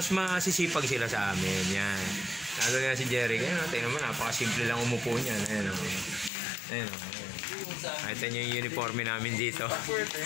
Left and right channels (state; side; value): drops out; right; at 6.3 s